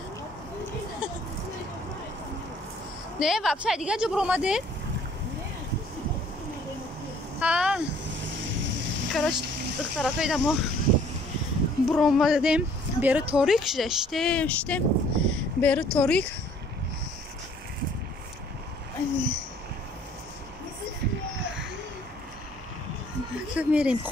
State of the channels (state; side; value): normal; both; correlation 0.58